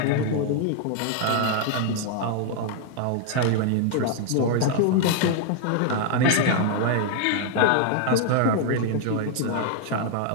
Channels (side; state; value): both; different; correlation 0.00